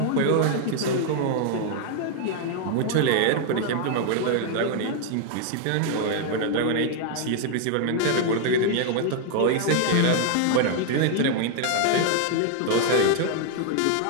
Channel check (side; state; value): both; different; correlation 0.00